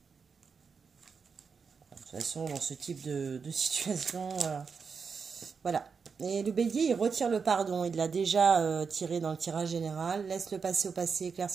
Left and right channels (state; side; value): quieter; left; 5.6 dB